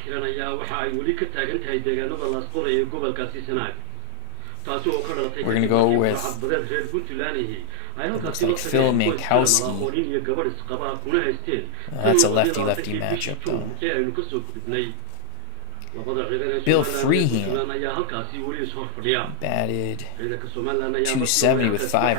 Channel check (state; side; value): different; both; correlation 0.00